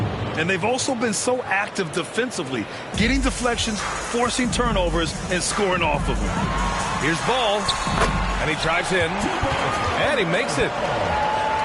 And they've also been so active defensively, getting deflections, forcing turnovers, and scoring off of them. Here's Ball, and he drives in, and he makes it.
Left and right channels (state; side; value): identical; both; correlation 1.00